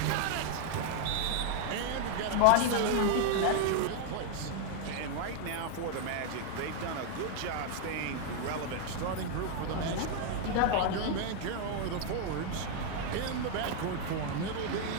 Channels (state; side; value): different; both; correlation 0.00